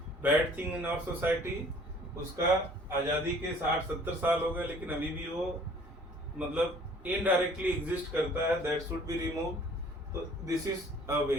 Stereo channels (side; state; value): both; normal; correlation 0.53